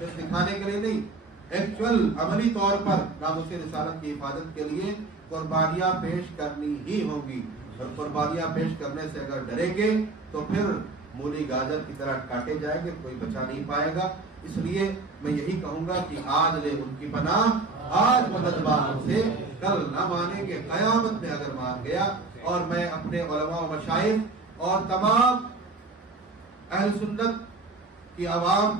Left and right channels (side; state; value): left; quieter; 3.6 dB